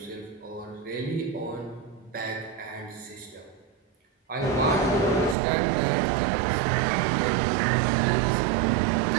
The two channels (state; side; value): drops out; left; at 5.4 s